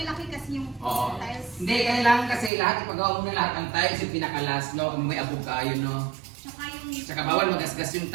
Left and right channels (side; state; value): left; drops out; at 2.5 s